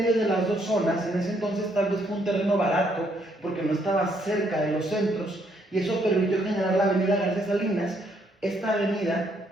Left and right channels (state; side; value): normal; both; correlation 0.71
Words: de las dos zonas. En ese entonces tal vez fue un terreno barato, porque no estaba cerca de los centros, y eso permitió generar la avenida García Salinas. Esta avenida